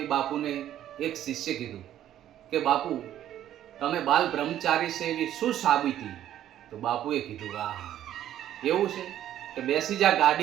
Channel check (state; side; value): quieter; left; 11.7 dB